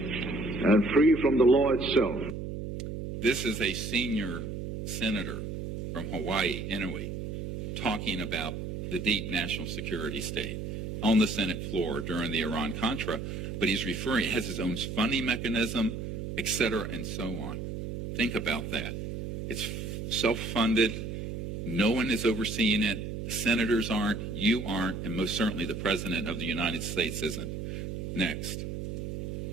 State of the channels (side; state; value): right; noise; hum, 6 dB below the sound